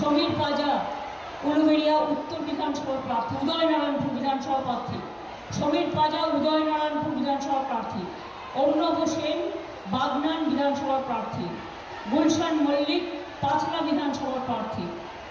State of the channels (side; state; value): both; identical; correlation 1.00